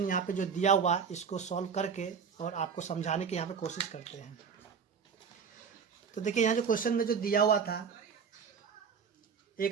यहाँ पे जो दिया हुआ इसको सॉल्व करके और आपको समझाने की यहाँ पे कोशिश करते हैं। तो देखिए यहाँ जो क्वेश्चन में जो दिया हुआ था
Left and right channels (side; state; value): left; quieter; 6.4 dB